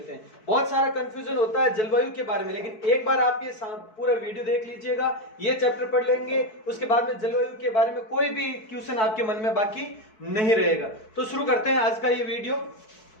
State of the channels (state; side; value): late; right; 4.6 ms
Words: हैं। बहुत सारा कंफ्यूजन होता है जलवायु के बारे में, लेकिन एक बार आप ये पूरा वीडियो देख लीजिएगा, ये चैप्टर पढ़ लेंगे, उसके बाद में जलवायु के बारे में कोई भी क्वेश्चन आपके मन में बाकी नहीं रहेगा। तो शुरू करते हैं आज का ये वीडियो।